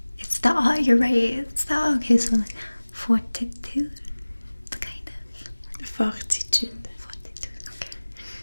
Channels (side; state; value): both; inverted; correlation -1.00